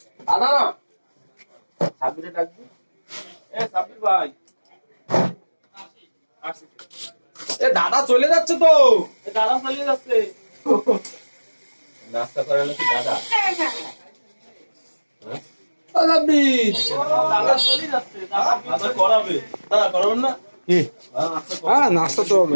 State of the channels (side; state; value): both; inverted; correlation -1.00